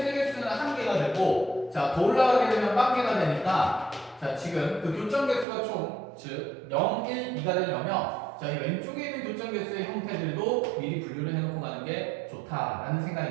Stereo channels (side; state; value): left; drops out; at 5.5 s